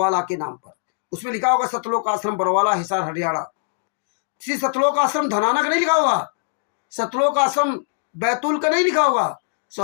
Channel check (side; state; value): right; silent; digital silence